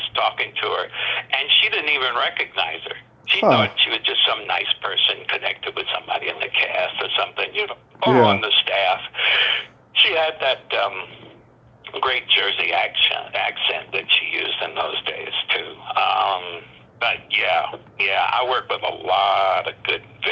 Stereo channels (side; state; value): both; identical; correlation 1.00